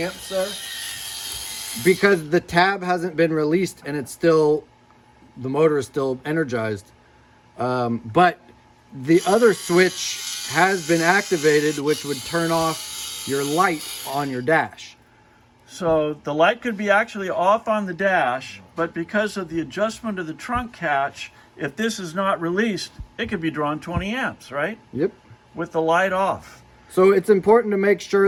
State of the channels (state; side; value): identical; both; correlation 1.00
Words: there. Because the tab hasn't been released and it's still, the motor is still energized. But the other switch has been activated, which would turn off your light on your dash. So the light could be actually off on the dash, but because of the adjustment of the trunk catch, if this is not released, it could be drawing 20 amps, right? Yep. With the light off. So it's important to make